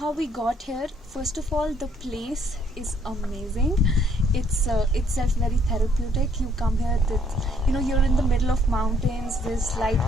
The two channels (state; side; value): normal; both; correlation 0.66